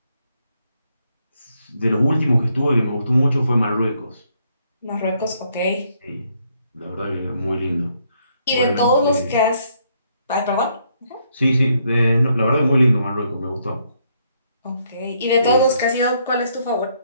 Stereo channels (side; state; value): both; inverted; correlation -0.72